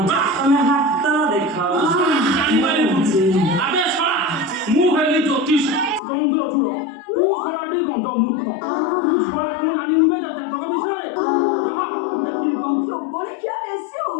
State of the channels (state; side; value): drops out; right; at 6.0 s